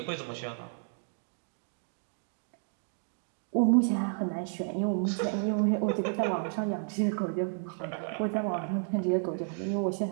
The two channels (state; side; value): silent; left; 57 dB below the other